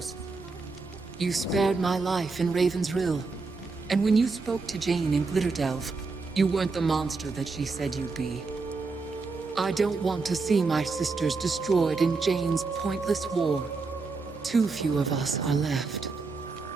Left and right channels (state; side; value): quieter; left; 4.1 dB